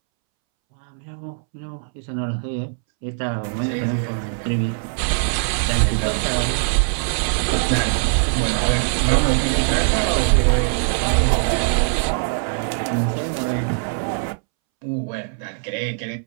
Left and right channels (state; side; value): silent; left; 65 dB below the other